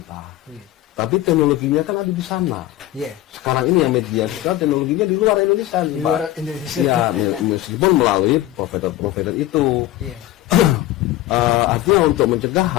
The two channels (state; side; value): quieter; right; 15.2 dB